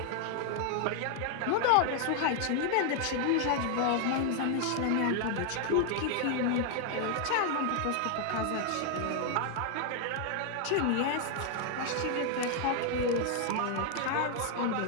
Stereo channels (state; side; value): different; both; correlation 0.00